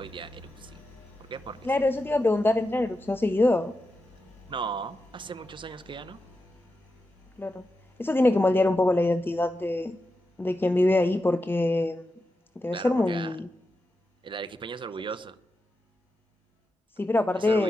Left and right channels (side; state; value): both; normal; correlation 0.89